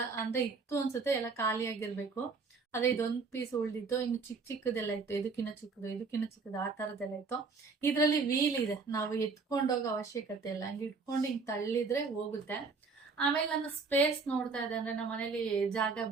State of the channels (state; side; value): quieter; left; 4.6 dB